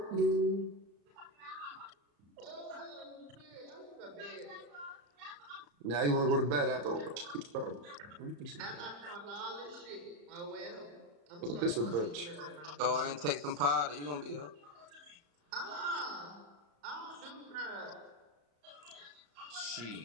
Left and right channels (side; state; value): left; late; 34 ms